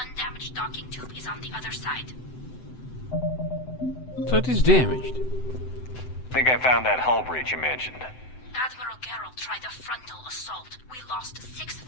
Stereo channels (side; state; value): right; late; 7.9 ms